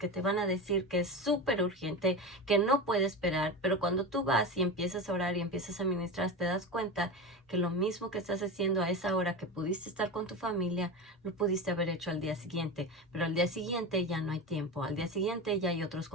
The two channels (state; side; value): normal; both; correlation 0.23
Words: te van a decir que es súper urgente, que no puede esperar, pero cuando tú vas y empiezas a orar y empiezas a ministrar, te das cuenta que lo mismo que estás haciendo a esa hora que pudiste estar con tu familia, lo pudiste haber hecho al día siguiente, pero al día siguiente ya no hay tiempo, al día siguiente ya hay otros